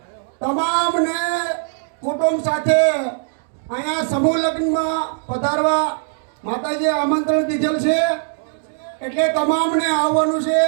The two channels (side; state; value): left; silent; digital silence